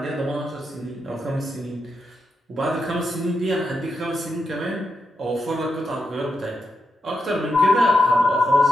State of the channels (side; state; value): both; normal; correlation 0.84